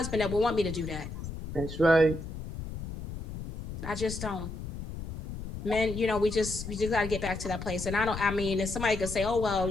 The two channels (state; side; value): noise; left; rumble, 9 dB below the sound